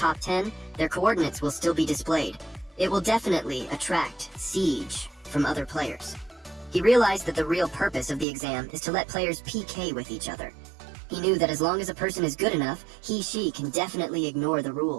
10, their coordinates will still be displayed. It will definitely attract siege from other players. He realized that the real purpose of the exam is to let players PK with each other. He knew that as long as a person is good enough, she can definitely ignore the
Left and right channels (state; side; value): drops out; left; at 8.2 s